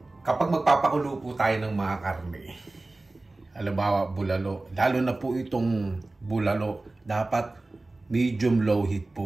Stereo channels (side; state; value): left; quieter; 3.0 dB